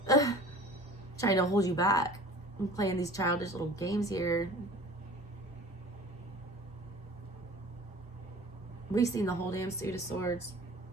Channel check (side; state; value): both; normal; correlation 0.43